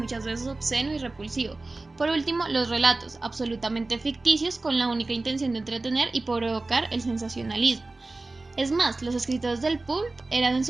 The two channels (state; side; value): quieter; left; 3.2 dB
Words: veces obsceno y repulsivo. Por último, los relatos, absolutamente ficticios con la única intención de entretener y provocar el sensacionalismo. Es más, los escritores del pulp eran en